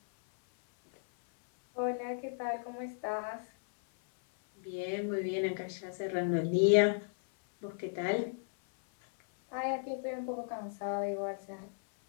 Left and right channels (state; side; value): silent; right; 55 dB below the other